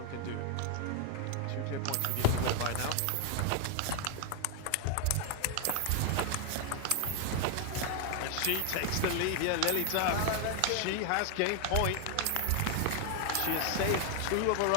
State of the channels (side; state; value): both; different; correlation 0.01